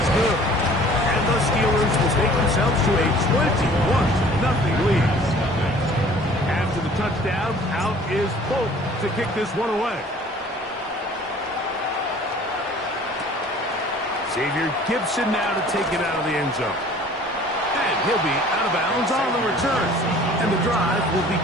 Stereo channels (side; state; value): both; normal; correlation 0.50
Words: good. And the Steelers will take themselves to a 21-0 lead. After the touchdown, out is Bolt to kick this one away. Xavier Gibson now to take it out of the end zone. And he'll be out of bounds on the return. And the drive will